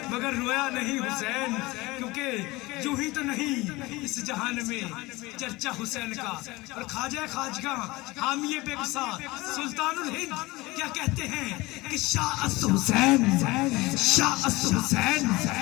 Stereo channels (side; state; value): right; quieter; 21.5 dB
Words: مگر رویا نہیں حسین، کیونکہ یوں ہی تو نہیں اس جہان میں چرچا حسین کا۔ اور خواجہ خواجگاں حامی بے گسا سلطان الہند کیا کہتے ہیں کہ شاہ است حسین، شاہ است حسین،